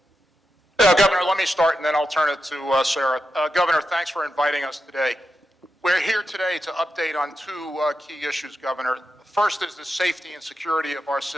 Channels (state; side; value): normal; both; correlation 0.88